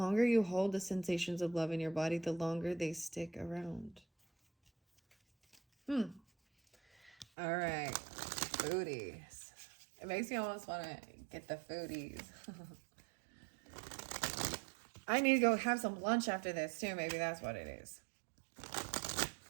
you hold the sensations of love in your body, the longer they stick around. All right. Foodies. It makes me almost want to get the foodies. I need to go have some lunch after this too. Maybe that's what it is.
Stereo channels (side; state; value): left; drops out; at 7.2 s